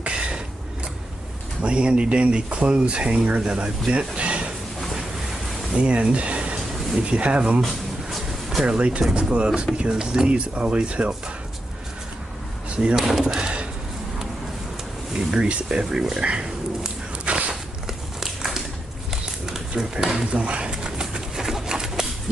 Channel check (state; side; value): normal; both; correlation 0.86